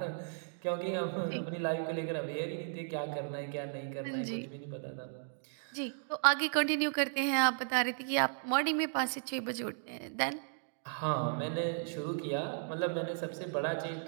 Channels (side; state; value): left; silent; digital silence